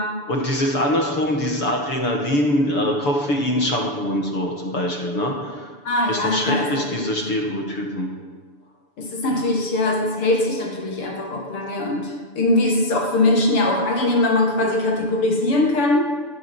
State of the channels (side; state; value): right; late; 6.9 ms